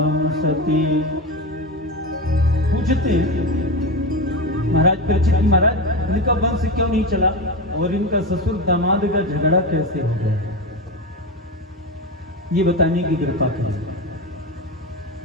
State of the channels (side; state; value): both; normal; correlation 0.19